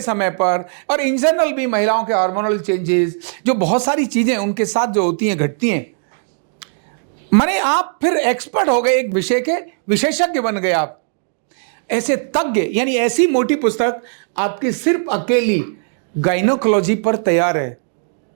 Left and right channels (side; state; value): left; silent; 67 dB below the other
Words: समय पर, और इन जनरल भी महिलाओं के हार्मोनल चेंजेस, जो बहुत सारी चीजें उनके साथ जो होती हैं, घटती हैं। माने आप फिर एक्सपर्ट हो गए, एक विषय के विशेषज्ञ बन गए आप। ऐसे तज्ञ, यानी ऐसी मोटी पुस्तक आपकी सिर्फ अकेली गायनोकोलॉजी पर तैयार है।